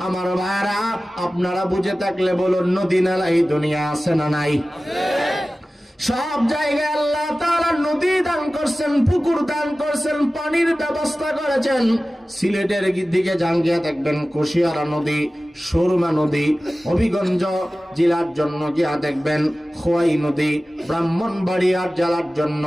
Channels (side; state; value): both; normal; correlation 0.96